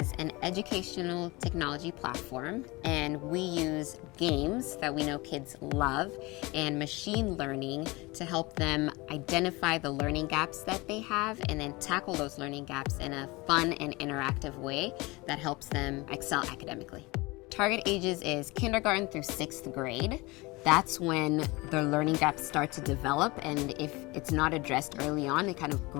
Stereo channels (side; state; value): right; quieter; 23.5 dB